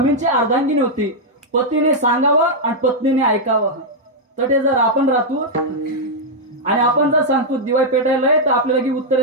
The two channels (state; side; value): normal; both; correlation -0.04